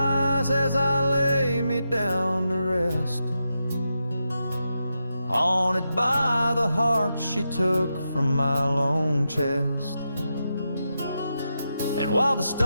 as I lay me down to rest, haunted by the heart she took from my lone chest. And while the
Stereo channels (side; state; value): both; inverted; correlation -0.87